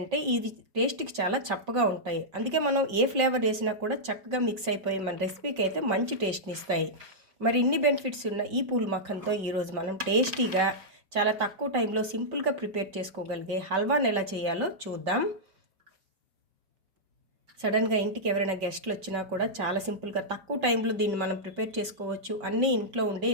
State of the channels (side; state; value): left; late; 5.2 ms